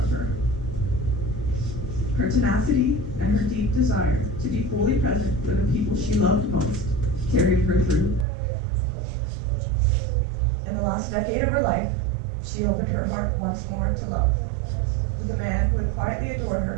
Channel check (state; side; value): drops out; left; at 8.2 s